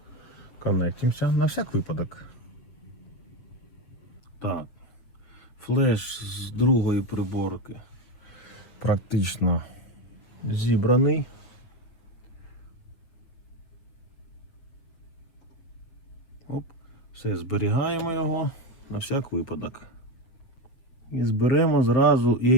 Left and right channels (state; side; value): late; right; 7.7 ms